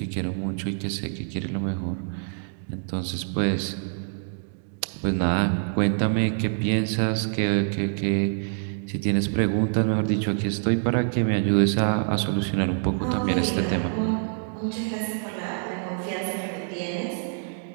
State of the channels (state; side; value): silent; left; 61 dB below the other